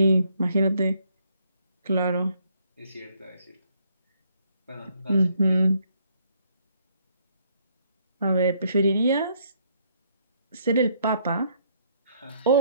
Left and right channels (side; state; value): both; inverted; correlation -0.69